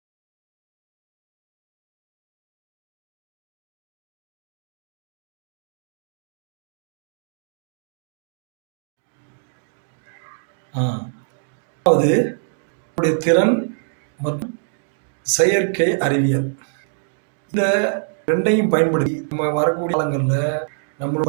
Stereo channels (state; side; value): silent; left; digital silence